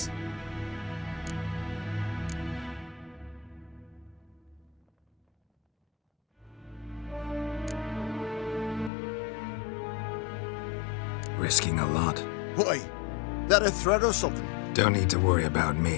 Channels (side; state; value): right; drops out; at 8.9 s